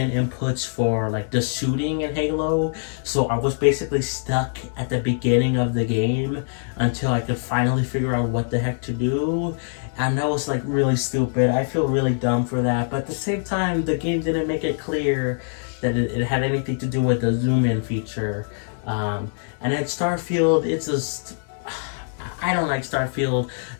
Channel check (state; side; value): silent; right; digital silence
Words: inputs for like the shooting in Halo. So I was basically stuck at the beginning of the game until I could finally figure out what the heck to do. And that was like really stupid. I feel really dumb for that. But at the same time, the game didn't make it clear that it had anything to do with the zoom in feature. And then Starfield, it's just, I don't like Starfield.